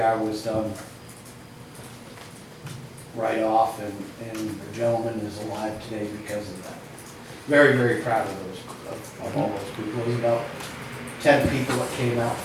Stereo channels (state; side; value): identical; both; correlation 1.00